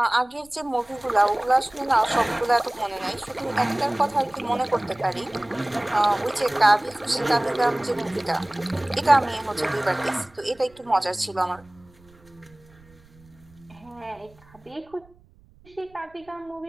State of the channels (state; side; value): noise; right; rumble, 27 dB below the sound